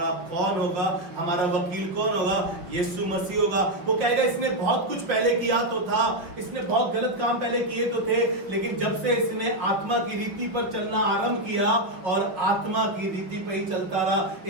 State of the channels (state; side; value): late; left; 5.3 ms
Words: कौन होगा? हमारा वकील कौन होगा? यीशु मसीह होगा। वो कहेगा इसने बहुत कुछ पहले किया तो था, इसने बहुत गलत काम पहले किए तो थे, लेकिन जब से इसने आत्मा की रीति पर चलना आरंभ किया और आत्मा की रीति पर ही चलता रहा,